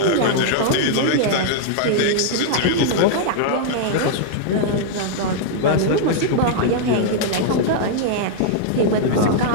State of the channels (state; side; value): different; both; correlation -0.01